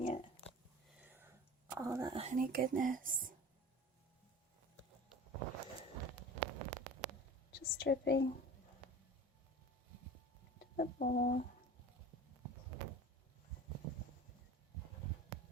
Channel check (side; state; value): both; normal; correlation 0.38